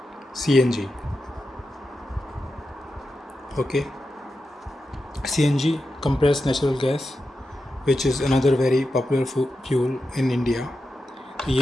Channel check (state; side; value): normal; both; correlation 0.89